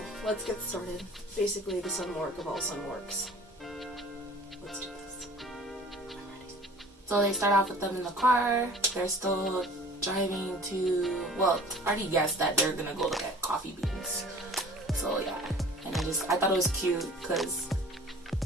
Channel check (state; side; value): normal; both; correlation 0.47